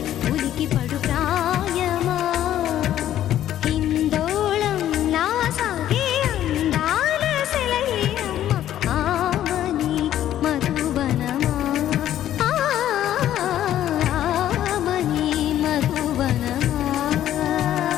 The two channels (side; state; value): right; quieter; 11.9 dB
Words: ఉలికి పడు ప్రాయమా హిందోళం నా సాగే అందాల సెలయేరమ్మ ఆమని మధువనమా ఆమని మధువనమా